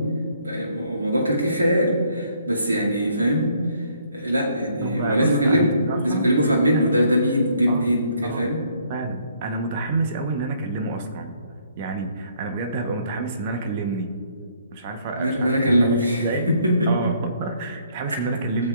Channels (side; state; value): both; inverted; correlation -0.66